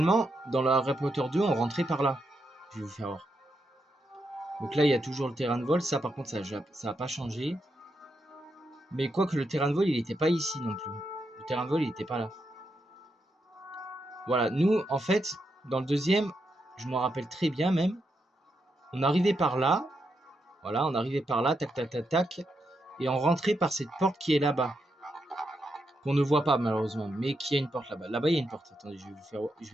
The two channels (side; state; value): both; normal; correlation 0.83